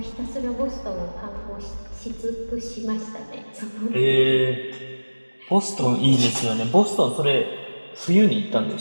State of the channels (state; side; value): inverted; both; correlation -1.00